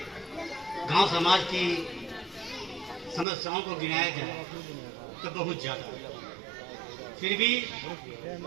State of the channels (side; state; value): left; drops out; at 3.2 s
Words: समाज की समस्याओं को गिनाया जाए तो बहुत ज्यादा, फिर भी